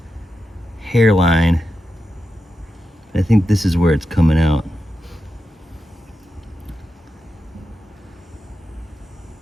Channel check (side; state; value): both; normal; correlation 0.89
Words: hairline. I think this is where it's coming out.